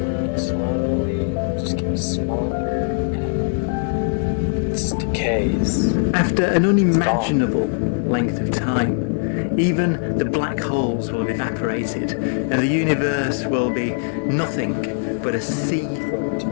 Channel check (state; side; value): silent; right; digital silence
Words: slowly, just getting smaller. Decays. After an unimaginable length of time, even the black holes will have evaporated, and the universe will be nothing but a sea